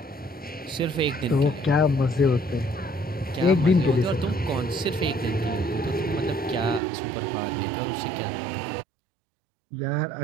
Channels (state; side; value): drops out; left; at 6.8 s